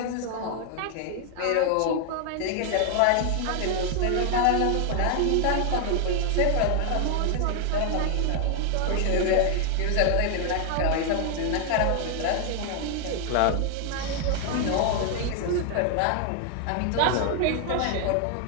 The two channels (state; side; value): different; both; correlation 0.00